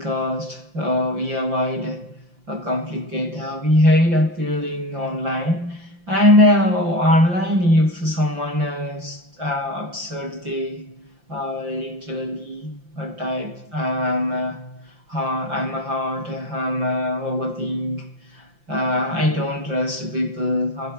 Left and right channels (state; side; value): late; left; 5.8 ms